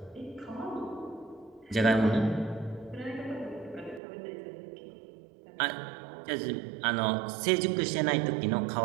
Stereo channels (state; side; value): drops out; left; at 4.0 s